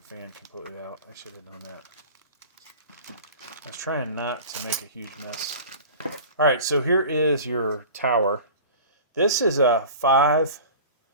fan completely out. I should have done that. I was trying not to make a huge mess. Alright, so here is your tower. This is a five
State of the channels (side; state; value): both; inverted; correlation -0.38